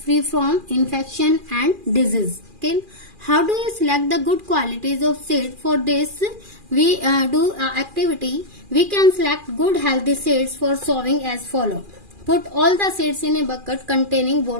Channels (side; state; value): left; late; 2.4 ms